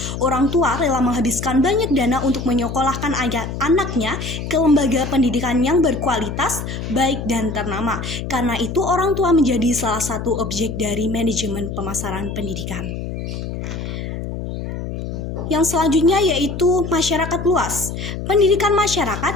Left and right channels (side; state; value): left; noise; hum, 6 dB below the sound